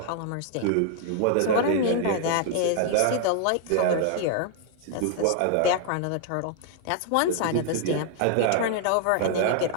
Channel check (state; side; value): different; both; correlation -0.01